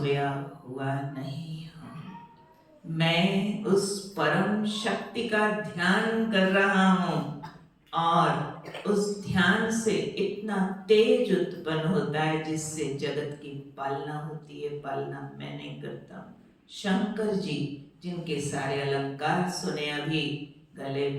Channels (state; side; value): identical; both; correlation 1.00